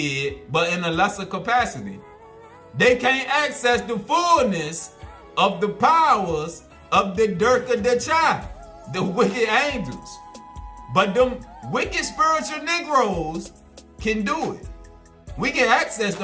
but in a lesser capacity. They can't access the fullness of the powers of the Dirk of the Chai, the wicked angels. But them wicked spiritual Negroes can do it. We can access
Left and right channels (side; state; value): both; identical; correlation 1.00